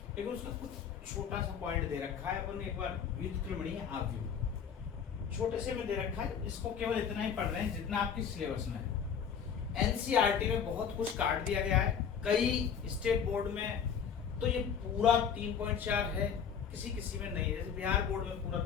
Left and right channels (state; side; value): quieter; right; 7.4 dB